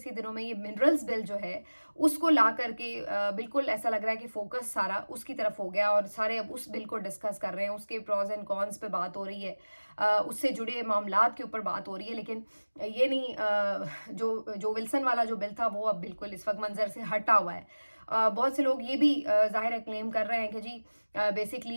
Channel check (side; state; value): both; inverted; correlation -1.00